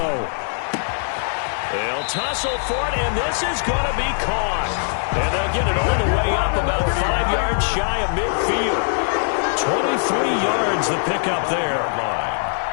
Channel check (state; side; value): silent; right; digital silence